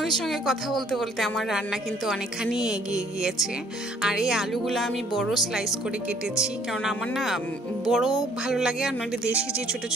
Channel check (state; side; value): normal; both; correlation 0.61